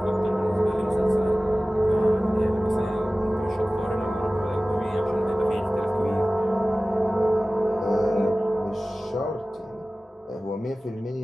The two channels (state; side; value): normal; both; correlation 0.97